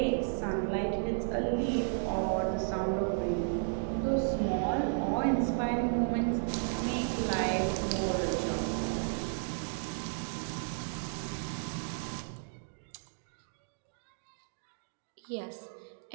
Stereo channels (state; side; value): silent; left; digital silence